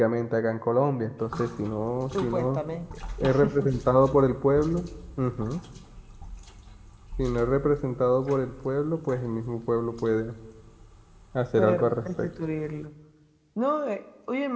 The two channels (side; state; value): both; identical; correlation 1.00